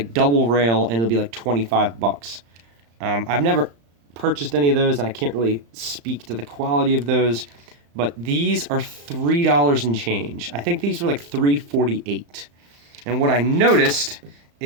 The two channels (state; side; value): late; left; 35 ms